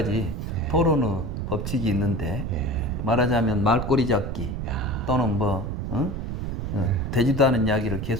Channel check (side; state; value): right; noise; rumble, 4 dB below the sound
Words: 토론의 법칙이 있는데 말하자면 말꼬리 잡기 또는 뭐 되지도 않은 이야기를